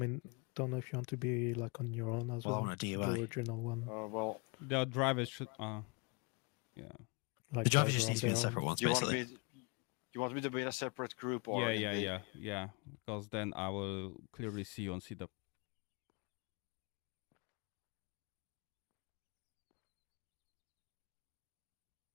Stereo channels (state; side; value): quieter; right; 30.6 dB